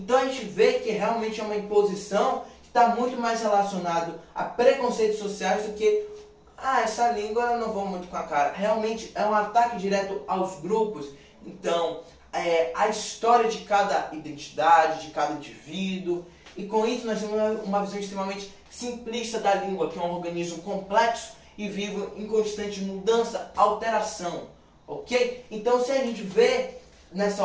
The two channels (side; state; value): both; identical; correlation 1.00